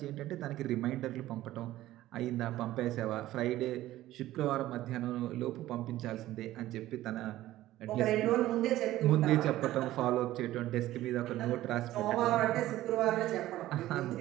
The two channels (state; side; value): quieter; left; 15.1 dB